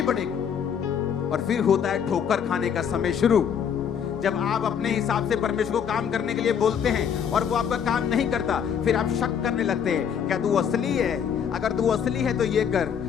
पड़ेगी। और फिर होता है ठोकर खाने का समय शुरू, जब आप अपने हिसाब से परमेश्वर को काम करने के लिए बोलते हैं और वो आपका काम नहीं करता, फिर आप शक करने लगते हैं, क्या तू असली है? अगर तू असली है तो ये कर,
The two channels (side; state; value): right; quieter; 7.8 dB